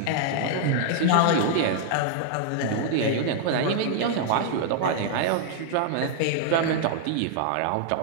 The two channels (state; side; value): different; both; correlation -0.01